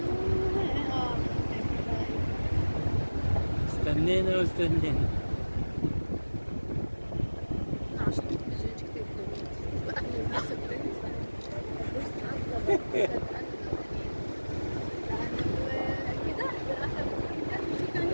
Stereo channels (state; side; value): inverted; both; correlation -1.00